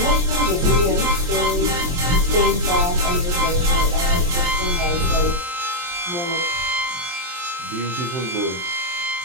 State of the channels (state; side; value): late; left; 23 ms